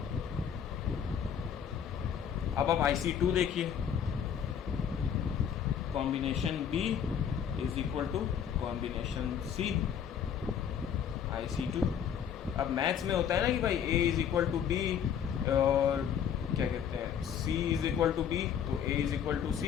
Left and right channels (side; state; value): right; quieter; 8.3 dB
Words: अब आप IC2 देखिए, combination B is equal to combination C। IC2। अब मैथ्स में होता है ना कि भाई A is equal to B और क्या कहते हैं, C is equal to B तो A is equal to